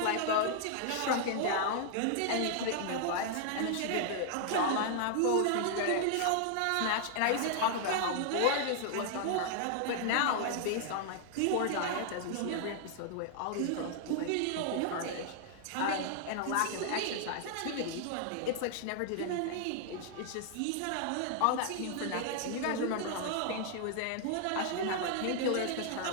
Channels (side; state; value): both; different; correlation 0.00